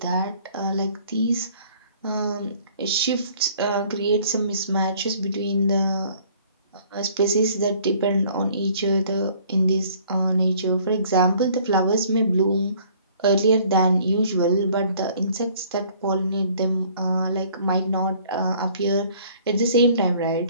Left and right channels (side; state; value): both; inverted; correlation -0.56